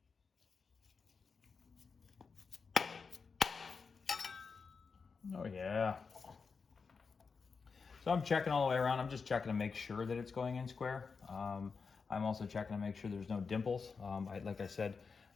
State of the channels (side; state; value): right; quieter; 5.1 dB